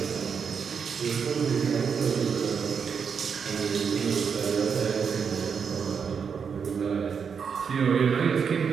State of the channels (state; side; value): quieter; left; 6.5 dB